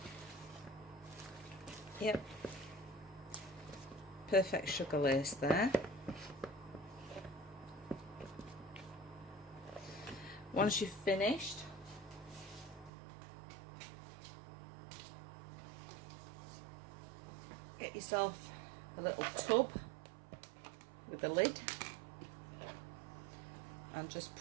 Yep. Perfect sugar lace there. Once you've finished, get yourself a little tub with a lid and just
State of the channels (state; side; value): drops out; left; at 12.9 s